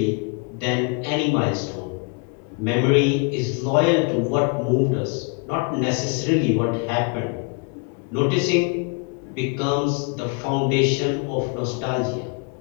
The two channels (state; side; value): quieter; right; 34.4 dB